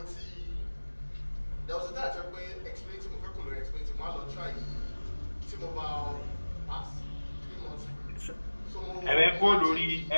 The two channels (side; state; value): both; inverted; correlation -1.00